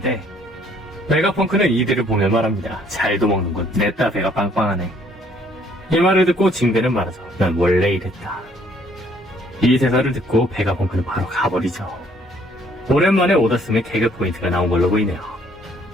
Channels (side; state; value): both; normal; correlation 0.63